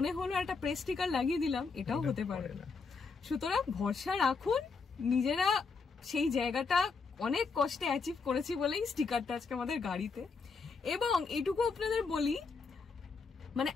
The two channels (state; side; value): quieter; right; 4.8 dB